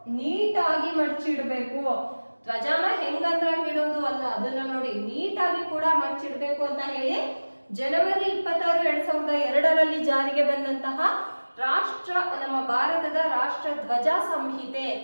ನೀಟಾಗಿ ಮಡಚಿಡ್ಬೇಕು. ಧ್ವಜನ ಹೆಂಗಂದ್ರಂಗ್ ಇಡೋದು ಅಲ್ಲ, ಅದನ್ನ ನೋಡಿ ನೀಟಾಗಿ ಕೂಡ ಮಡಚಿಡ್ಬೇಕು ಅಂತ ಹೇಳಿ January 26, 2002ರಲ್ಲಿ ಜಾರಿಗೆ ಬಂದಂತಹ ನಮ್ಮ ಭಾರತದ ರಾಷ್ಟ್ರ ಧ್ವಜ ಸಂಹಿತೆ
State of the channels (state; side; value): inverted; both; correlation -1.00